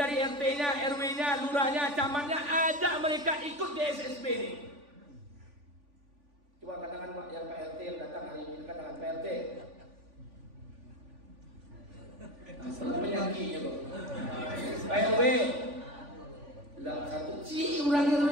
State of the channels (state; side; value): late; left; 3.5 ms